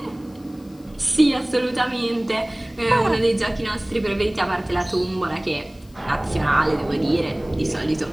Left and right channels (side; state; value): left; noise; hiss, 29 dB below the sound